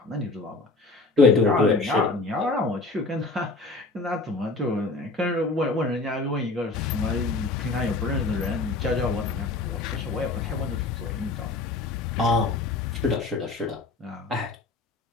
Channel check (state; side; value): quieter; right; 3.5 dB